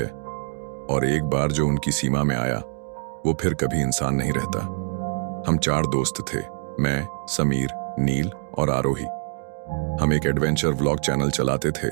और एक बार जो उनकी सीमा में आया वो फिर कभी इंसान नहीं रहता। हम 4 दोस्त थे, मैं, समीर, नील और आरोही। हम एक एडवेंचर व्लॉग चैनल चलाते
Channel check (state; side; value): silent; left; digital silence